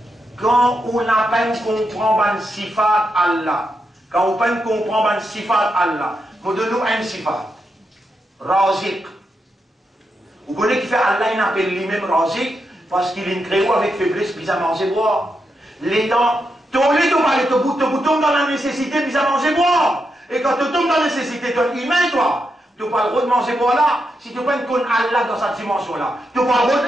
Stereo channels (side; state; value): both; normal; correlation 0.84